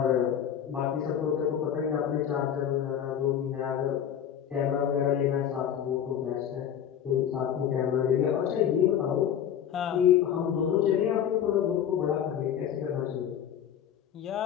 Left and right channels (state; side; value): quieter; right; 9.3 dB